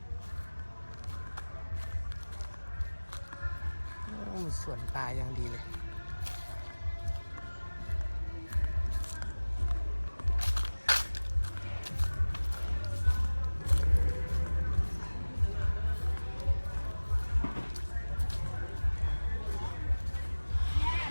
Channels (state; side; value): inverted; both; correlation -1.00